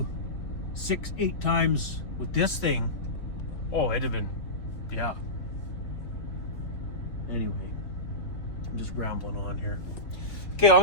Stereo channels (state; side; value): late; right; 3.6 ms